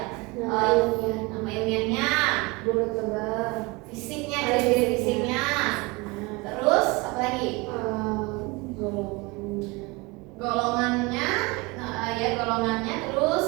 Nama ilmiahnya, fisiknya, ciri-ciri fisiknya. Terus apa lagi? Golongannya, golongannya.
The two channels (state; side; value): quieter; left; 25.1 dB